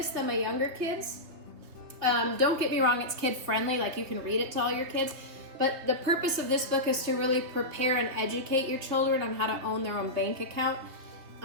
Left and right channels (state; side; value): late; left; 3.2 ms